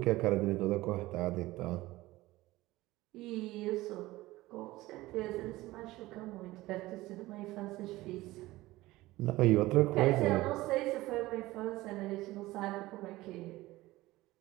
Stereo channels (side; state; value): left; quieter; 18.3 dB